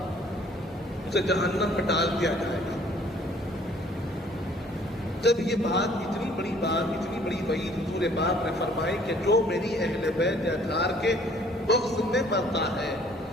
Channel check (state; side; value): normal; both; correlation 0.57